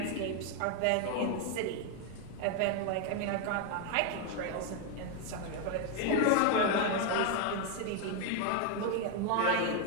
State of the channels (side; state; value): both; different; correlation 0.01